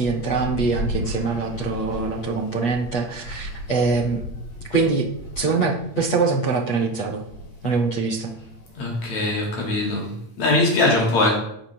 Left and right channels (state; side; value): late; right; 8.3 ms